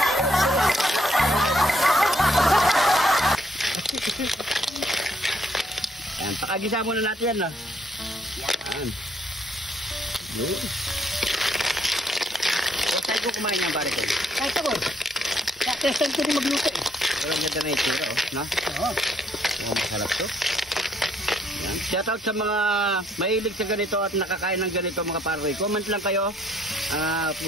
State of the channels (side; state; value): both; normal; correlation 0.70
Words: Yan, pakagisa muna natin yan, no? Yan. Yun. Huwag tayo ko kumain yan, pare ko. Kahit ako, testan ko rin magluto eh. Walang ganda na itsura, oh. No? Oo. Oh, masarap to. Yan. Shoutout sa mga mahilig sa ganito at nakakain ng ganito mga paroy. Comment lang kayo